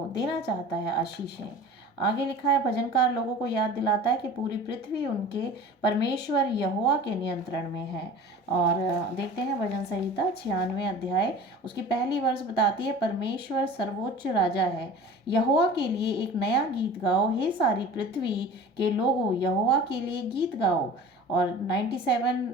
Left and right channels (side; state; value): both; normal; correlation 0.39